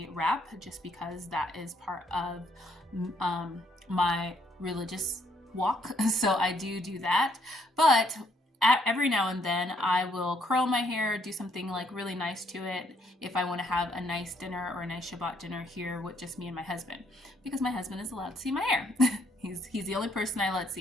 wrap, just because that is part of my religious walk. So I do that. But every now and then I will curl my hair, do something like really nice to it if I want to have a nice dinner or a nice Shabbat dinner here with just me and my husband, because my husband is allowed to see my hair. He's the only person I let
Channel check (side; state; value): both; normal; correlation 0.70